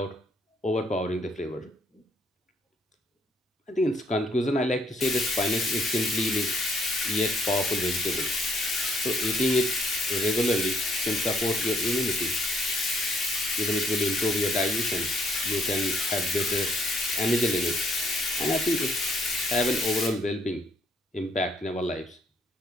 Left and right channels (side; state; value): both; normal; correlation 0.68